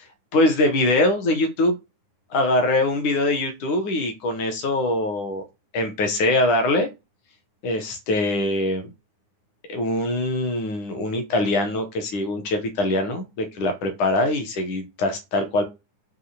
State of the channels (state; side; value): late; right; 9.7 ms